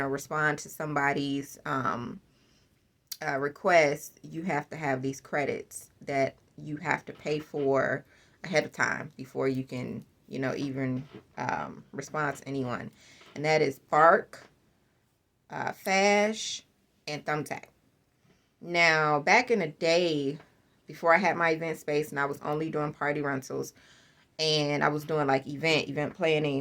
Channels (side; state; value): both; identical; correlation 1.00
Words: respond to somebody's request, you have to have these credits that you have to pay for ahead of time before you can, even respond to anyone. And that is Bark, Fash, and Thumbtack. Now, back in the day, before I had my event space and I was only doing party rentals and I was doing like event